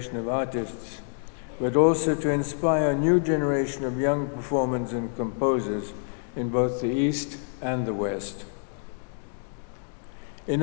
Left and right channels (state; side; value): silent; right; 60 dB below the other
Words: of artists, but also to inspire a new generation of young performers and composers in both the East and the West. In